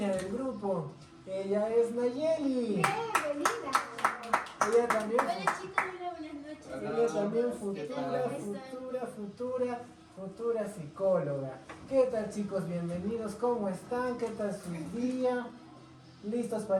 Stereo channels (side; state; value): both; identical; correlation 1.00